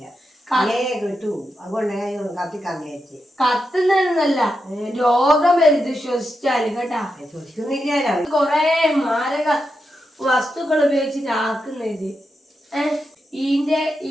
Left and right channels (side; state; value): both; normal; correlation 0.86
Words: കിട്ടൂ. അതുകൊണ്ട് കത്തിക്കാൻ വിചാരിച്ച്. കത്തുന്നല്ല, രോഗം വരുത് ശ്വസിച്ചാല് കേട്ടാ. ശ്വസിക്കുന്നില്ല, കൊറേ മാരക വസ്തുക്കൾ ഉപയോഗിച്ചിട്ട് ആക്കുന്നത്. ഇതിന്റെ